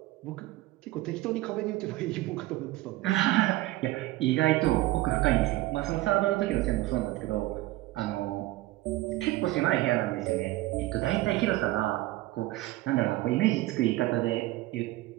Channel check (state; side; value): quieter; left; 17.7 dB